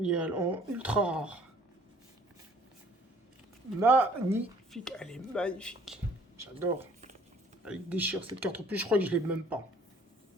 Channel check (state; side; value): normal; both; correlation 0.57